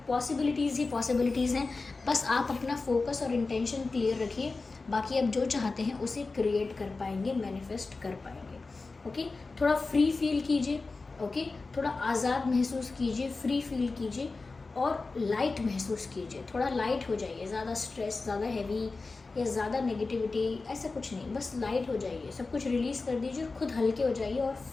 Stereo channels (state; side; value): quieter; right; 3.8 dB